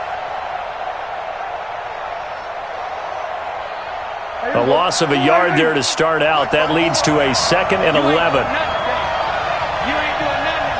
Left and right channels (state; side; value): identical; both; correlation 1.00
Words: A loss of a yard there to start out. That leads to a 2nd and 11.